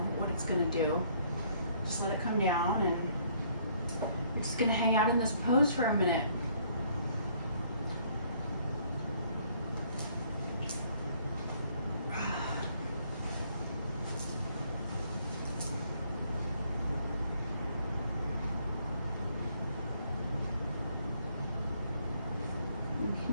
what it's going to do. Just let it come down, and we're just going to hang out in this pose for a minute.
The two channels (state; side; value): inverted; both; correlation -0.64